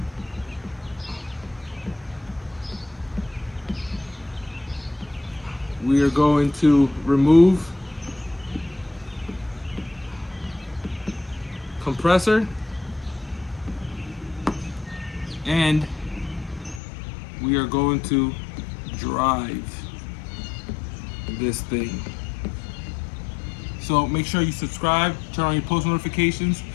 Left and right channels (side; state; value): right; drops out; at 16.8 s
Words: We are going to remove compressor, and we are going to drive this thing. So make sure you subscribe, turn on your post notifications,